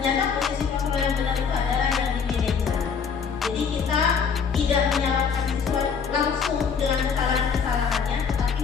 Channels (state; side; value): quieter; right; 6.3 dB